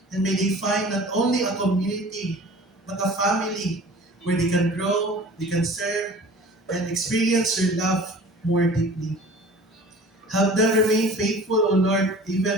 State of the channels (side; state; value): both; normal; correlation 0.43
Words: And may they find not only a community, but a family where they can grow, they can serve, and experience your love more deeply. Help them remain faithful, O Lord,